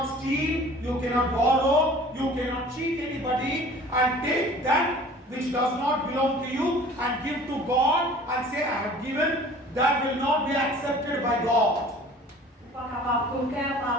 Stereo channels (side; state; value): both; normal; correlation 0.47